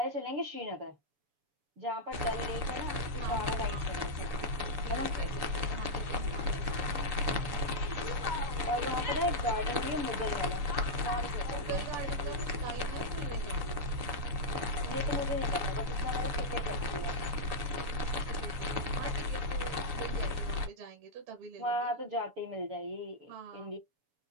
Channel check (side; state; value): left; late; 7.0 ms